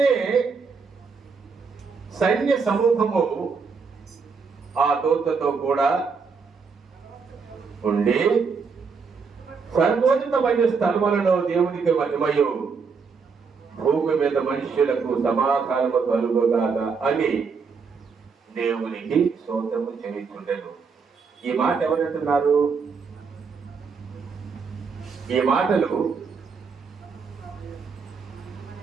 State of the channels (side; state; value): left; quieter; 5.3 dB